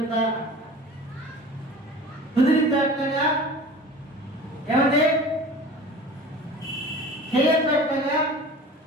కుదిరితేగా ఏమంటే చేయట్లుగా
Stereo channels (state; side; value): normal; both; correlation 0.39